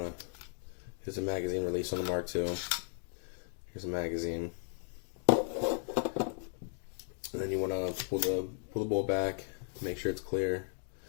to, here's a magazine release on the Mark II. Here's a magazine. And then you want to pull the bolt back, make sure it's clear,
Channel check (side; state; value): right; silent; 54 dB below the other